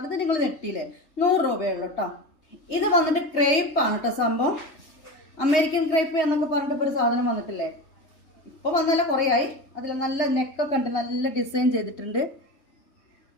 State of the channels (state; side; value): late; right; 3.2 ms